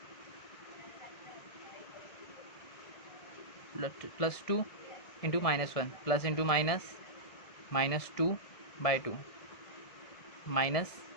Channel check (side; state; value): right; late; 1.7 ms